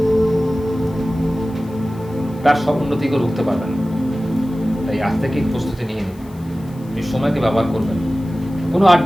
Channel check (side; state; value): left; noise; hiss, 27 dB below the sound